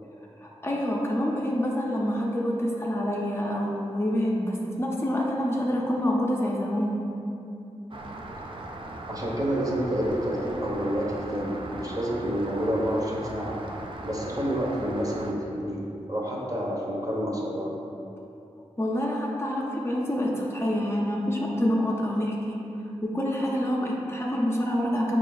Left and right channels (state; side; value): normal; both; correlation 0.85